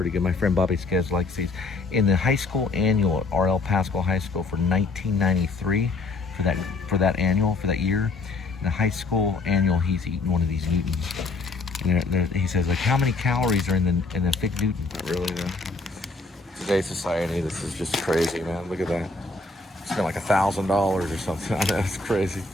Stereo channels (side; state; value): right; quieter; 3.6 dB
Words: good. My friend Bobby Skez likes these. In the high school annual at R.L. Pascal High School for 1993, for that year, in the high school annual, he's eating one of these Newtons. And he says, like, how many calories are in the fig Newton? Not really, though. Today's society, this is just crazy, man. Look at that. Spent like $1,000 or something. I know, it's crazy.